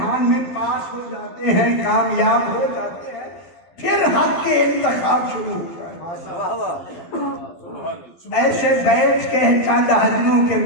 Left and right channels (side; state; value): right; late; 12 ms